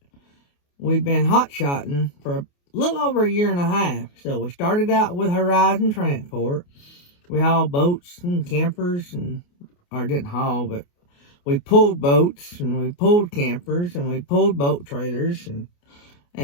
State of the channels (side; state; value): right; late; 28 ms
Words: we've been hot-shotting for a little over a year and a half. So we started out with Horizon Transport. We hauled boats and campers, or didn't haul, but we pulled boats, and we pulled campers, and we pulled boat trailers,